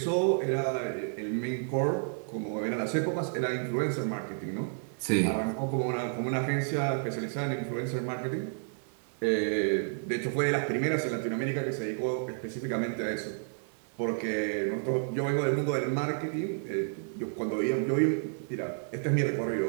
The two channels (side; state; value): left; silent; digital silence